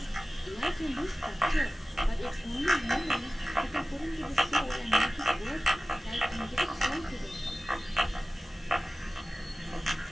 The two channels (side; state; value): both; normal; correlation 0.97